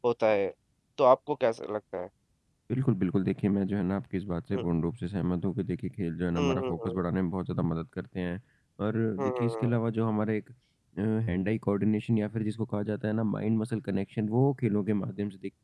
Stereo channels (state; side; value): identical; both; correlation 1.00